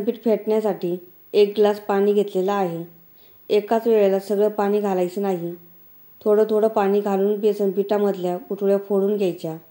पीठ फेटण्यासाठी 1 ग्लास पाणी घेतलेलं आहे. एकाच वेळेला सगळं पाणी घालायचं नाही. थोडं थोडं पाणी घालून बेसन पिठामधल्या गुठळ्या फोडून घ्यायच्या.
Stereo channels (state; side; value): identical; both; correlation 1.00